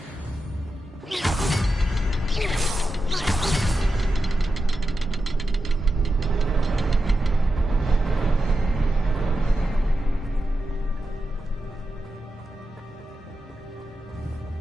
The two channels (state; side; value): normal; both; correlation 0.90